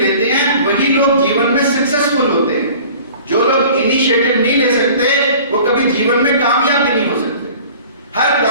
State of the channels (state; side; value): inverted; both; correlation -0.46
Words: हैं वही लोग जीवन में सक्सेसफुल होते हैं। जो लोग इनिशिएटिव नहीं ले सकते वो कभी जीवन में कामयाब भी नहीं हो सकते। हर